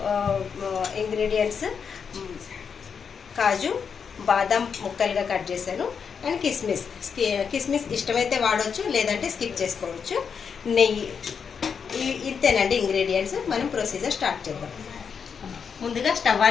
ఇంగ్రీడియంట్స్ కాజు, బాదం ముక్కలుగా కట్ చేశాను, అండ్ కిస్మిస్. కిస్మిస్ ఇష్టమైతే వాడవచ్చు, లేదంటే స్కిప్ చేసుకోవచ్చు. నెయ్యి, ఇంతేనండి ఇంగ్రీడియంట్స్. మనం ప్రొసీజర్ స్టార్ట్ చేద్దాం. ముందుగా స్టవ్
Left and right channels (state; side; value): quieter; right; 6.5 dB